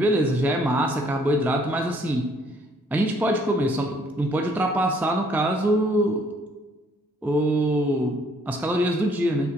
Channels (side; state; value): both; normal; correlation 0.64